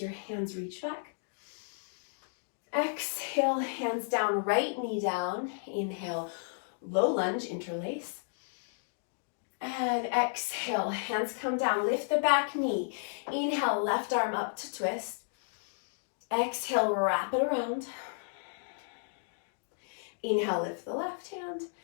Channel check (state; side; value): silent; right; digital silence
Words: your hands, reach back. Exhale, hands down, right knee down. Inhale, low lunge, interlace. And exhale, hands come down, lift the back knee. Inhale, left arm up to twist. Exhale, wrap it around. Inhale, lift the left hand.